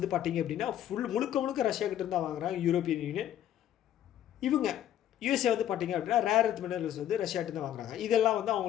பார்த்தீங்க அப்படின்னா முழுக்க ரஷ்யா கிட்டேருந்து தான் வாங்குறாங்க யூரோப்பியன் யூனியன். இவங்க யூஎஸ்ஏ வந்து பார்த்தீங்க அப்படின்னா ரேர் எர்த் மினரல்ஸ் வந்து ரஷ்யாகிட்ட தான் வாங்குறாங்க. இதெல்லாம் வந்து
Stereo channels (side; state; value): right; quieter; 11.2 dB